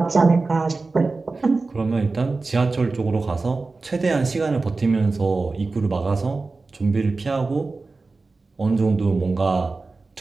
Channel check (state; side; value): quieter; left; 3.7 dB